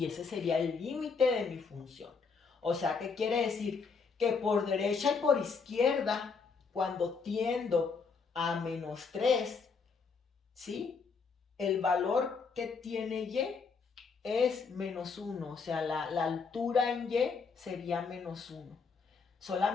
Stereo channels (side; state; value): right; quieter; 5.1 dB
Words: ese sería el límite de mi función. O sea, ¿qué quiere decir? Que por derecha y por izquierda, cuando tiendo a menos 3, ¿sí? El valor que tiene y es menos 1, o sea, la altura en y sería menos 1.